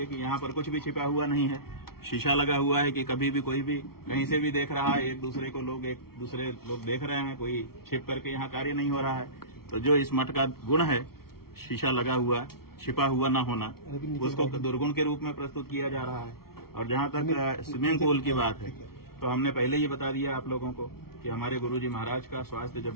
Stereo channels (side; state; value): right; late; 0.94 ms